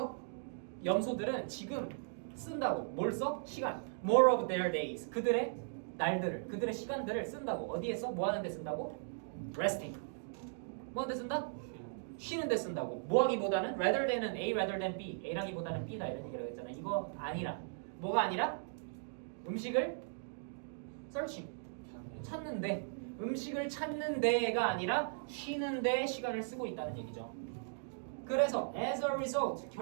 염소들은 지금 쓴다고. 뭘 써? 시간. More of their days. 그들의 날들을, 그들의 시간들을 쓴다고. 어디에 써? 뭐 하는 데 쓴다고? Resting. 뭐 하는 데 쓴다? 쉬는 데 쓴다고. 뭐 하기보다는 rather than은 A rather than B. A라기보다는 B다 이런 얘기를 했잖아. 이거 아니라. 뭐가 아니라? 음식을 searching. 찾는데. 음식을 찾는 데가 아니라 쉬는 데 시간을 쓰고 있다는 얘기죠. 그래서 as a result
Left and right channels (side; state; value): left; silent; digital silence